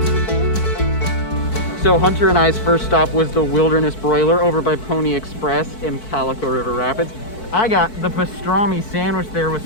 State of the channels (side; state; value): right; late; 4.6 ms